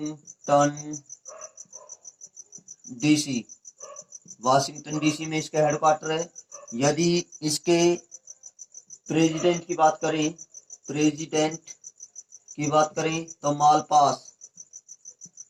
वाशिंगटन डीसी में इसका हेडक्वार्टर है। यदि इसके प्रेसिडेंट की बात करें तो मालपास,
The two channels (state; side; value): identical; both; correlation 1.00